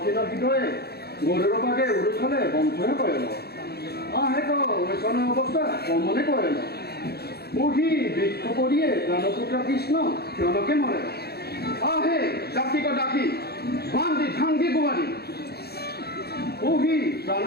হৃদয়ে গরুর বাগে উড়ুছলে বন্ধনে করেন আহে তো ওইসন অবস্থা কমনে করেন ওহি বৃক্ষ পড়িয়ে প্রাণপুত্র কৃষ্ণ জনকে মরে আহে ডাকি ডাকি বান্দি ঝাঙ্গি গুয়ারি ওহি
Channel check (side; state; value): right; late; 0.46 ms